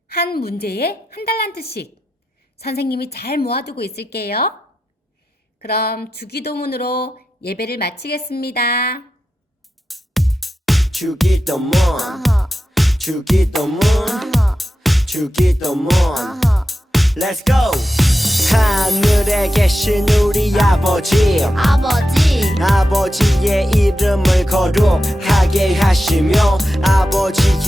한 문제에 한 달란트씩. 선생님이 잘 모아두고 있을게요. 그럼 주기도문으로 예배를 마치겠습니다. 주기도문 주기도문 주기도문 Let's go 하늘에 계신 우리 아버지 아버지의 이름을 거룩하게 하시며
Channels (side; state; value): both; normal; correlation 0.90